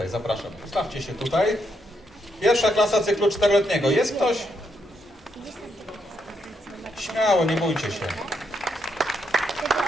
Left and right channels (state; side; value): normal; both; correlation 0.78